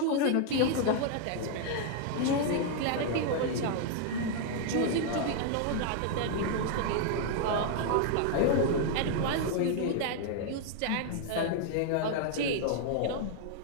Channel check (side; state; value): both; different; correlation -0.01